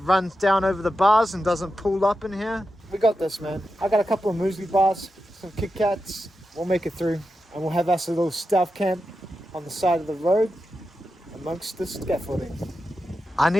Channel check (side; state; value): both; normal; correlation 0.89